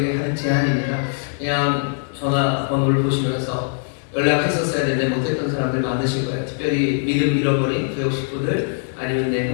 하는 제안입니다. 그냥 전화번호를 보시면서 연락했었어야 되는데 못했던 사람들 많으실 거예요. 특별히 믿음 잃어버린 교육 식구들 아니면 내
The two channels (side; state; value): right; silent; digital silence